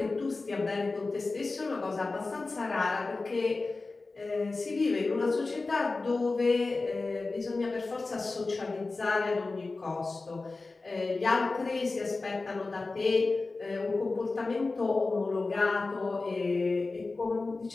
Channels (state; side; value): quieter; right; 3.6 dB